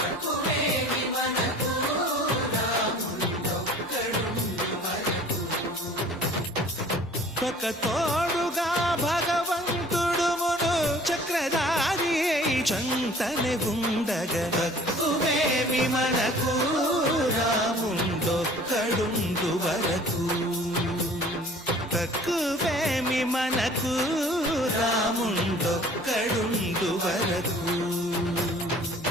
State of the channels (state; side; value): normal; both; correlation 0.50